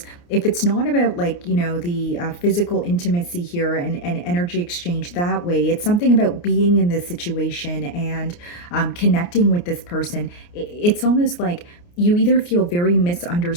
if it's not about like, the physical intimacy here and energy exchange that way, it's something about being in this situation and connecting with this person. It's almost like you either feel very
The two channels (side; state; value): right; late; 29 ms